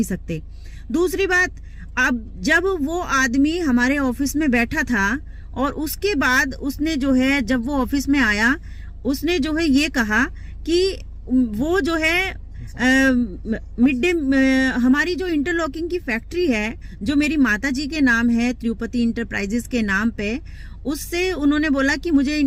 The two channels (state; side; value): identical; both; correlation 1.00